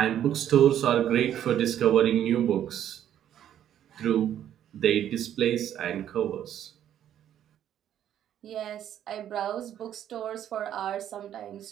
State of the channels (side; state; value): left; quieter; 10.6 dB